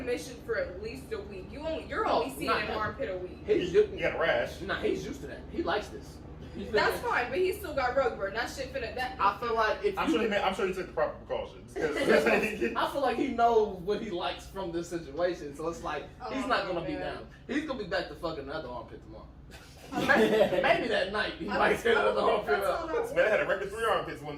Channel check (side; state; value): both; identical; correlation 1.00